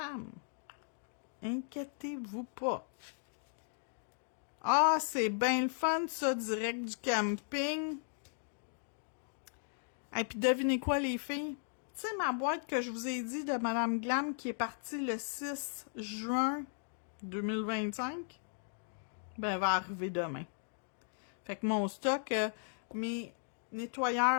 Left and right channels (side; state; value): right; silent; digital silence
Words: Inquiétez-vous pas. Ah, c'est bien le fun, ça, direct du camping. Et puis, devinez quoi, les filles? Tu sais, ma boîte que je vous ai dit de Madame Glam qui est partie le 6 juin 2025, ben, elle va arriver demain. Fait que mon stock, mes